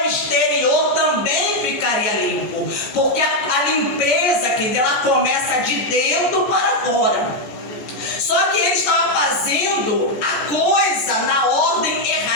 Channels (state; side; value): late; right; 15 ms